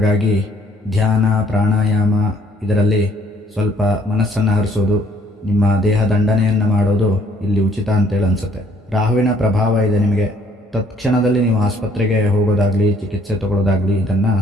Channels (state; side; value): normal; both; correlation 0.63